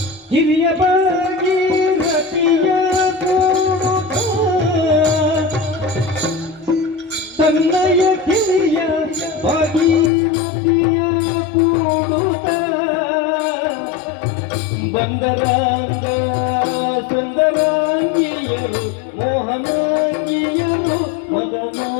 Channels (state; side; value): drops out; right; at 10.1 s